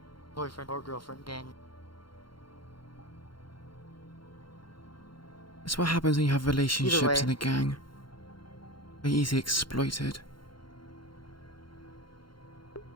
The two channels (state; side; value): late; right; 0.73 ms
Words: boyfriend or girlfriend gang. That's what happens when you have relationships way. in a gang. They're easily exploited.